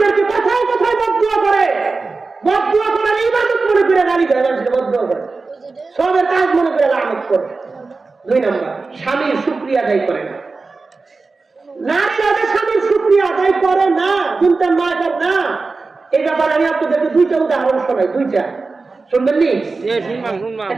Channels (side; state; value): left; quieter; 4.0 dB